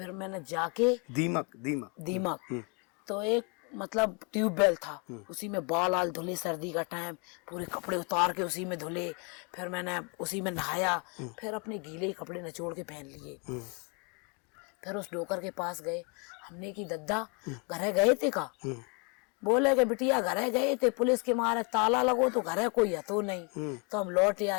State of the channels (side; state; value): right; quieter; 34.0 dB